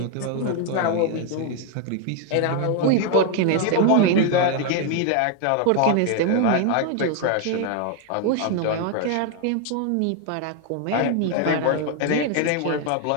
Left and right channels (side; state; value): both; different; correlation 0.01